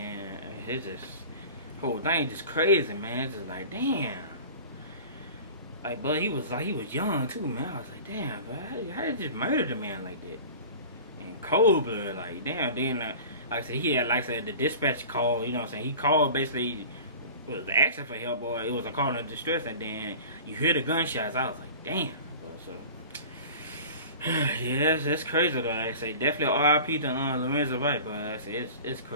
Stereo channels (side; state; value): both; inverted; correlation -0.39